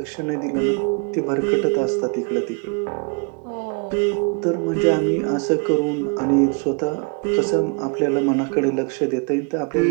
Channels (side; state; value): left; quieter; 34.3 dB